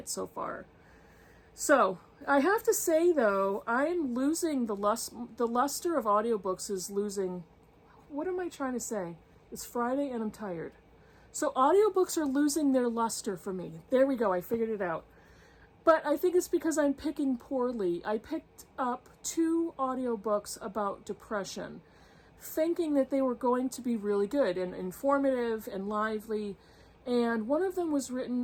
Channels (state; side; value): identical; both; correlation 1.00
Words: so far. So I have to say, though, I'm losing the luster of audiobooks is losing. What am I trying to say? It's Friday and I'm tired. So audiobooks are losing their luster for me. There we go. I figured it out. But I think it's because I'm picking poorly. I picked up 2 audiobooks about depression, thinking that they were going to be really good and informative and lively. And one of them was